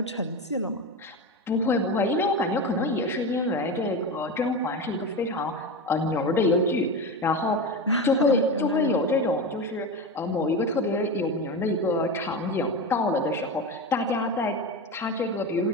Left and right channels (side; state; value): both; normal; correlation 0.22